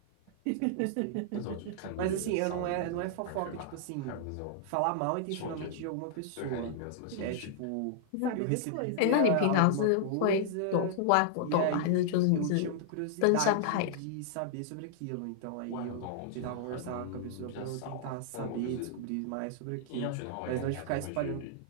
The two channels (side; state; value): both; different; correlation -0.01